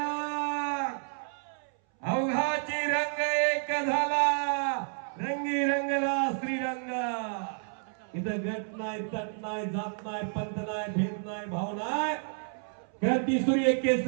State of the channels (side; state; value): left; silent; 58 dB below the other